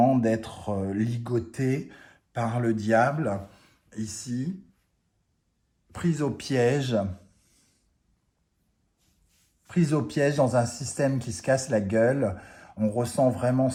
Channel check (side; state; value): both; identical; correlation 1.00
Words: d'être ligoté par le diable, ici, pris au piège, prise au piège dans un système qui se casse la gueule. On ressent vraiment